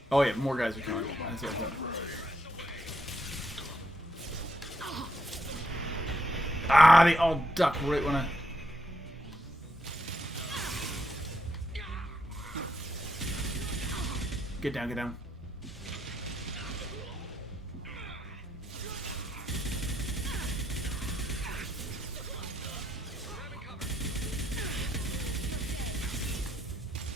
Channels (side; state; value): both; normal; correlation 0.77